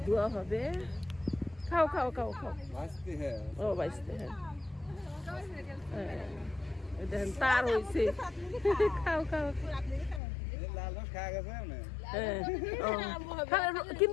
ধোয়া হবে। খাও খাও খাও খাও। ভাজতে হ্যাঁ ও বাইসতে হ্যাঁ হ্যাঁ এই দেখেন তার হয়েছে। খাও খাও লাল রস খাওয়া গেছে না হ্যাঁ ও।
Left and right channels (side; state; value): right; drops out; at 10.2 s